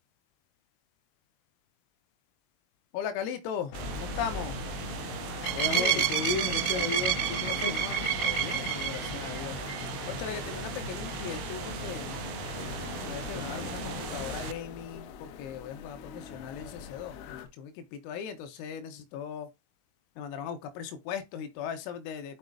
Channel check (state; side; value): late; right; 22 ms